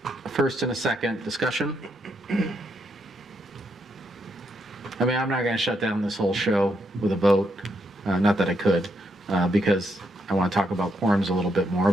A first and a second. Discussion? I mean, I'm not going to shut down this whole show with a vote. Not that I could, because I want to talk about quorums a little bit more.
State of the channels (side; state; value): both; normal; correlation 0.78